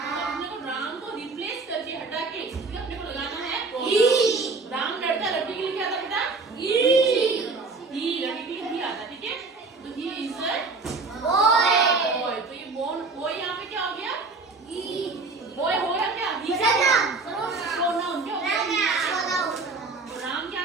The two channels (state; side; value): quieter; left; 3.9 dB